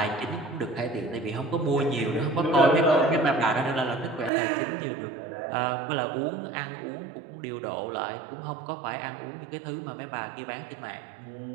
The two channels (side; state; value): left; drops out; at 4.3 s